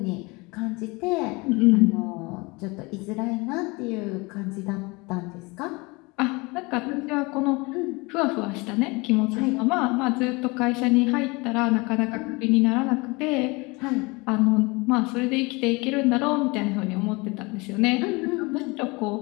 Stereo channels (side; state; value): right; quieter; 25.7 dB